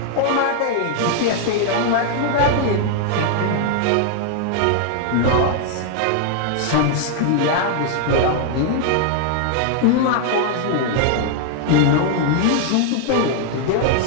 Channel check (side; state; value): both; different; correlation 0.00